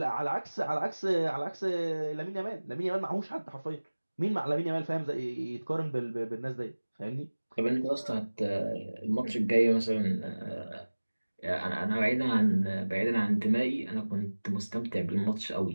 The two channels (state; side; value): inverted; both; correlation -1.00